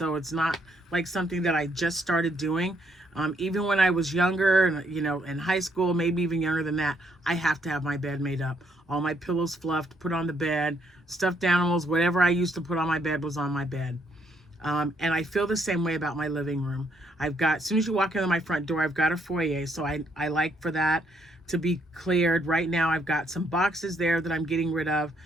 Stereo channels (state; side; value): normal; both; correlation 0.72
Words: it's not like something that I just started doing. Even when I was younger, and you know, in high school, maybe even younger than that, I have to have my bed made up. All my pillows fluffed, put on the bed, stuffed animals, whatever I used to put on my bed was on my bed. And I feel the same way about my living room. I've got, as soon as you walk into my front door, I've got a foyer. So I like for that to be cleared. Right now, I've got some boxes there that I'm getting rid of.